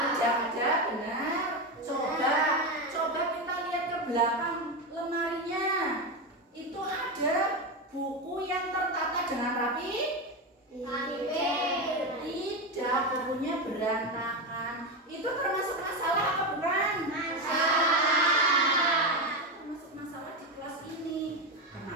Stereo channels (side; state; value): both; normal; correlation 0.13